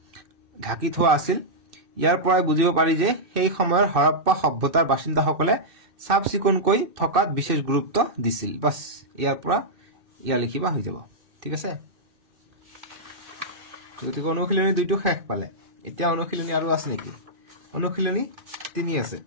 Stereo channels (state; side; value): late; left; 2.6 ms